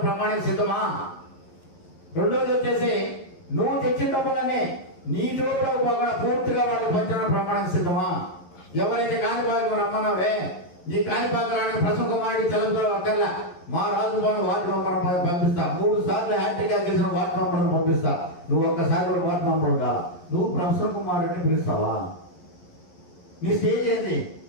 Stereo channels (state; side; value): late; right; 11 ms